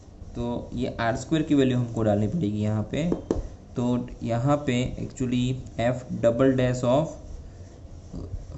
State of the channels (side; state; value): both; identical; correlation 1.00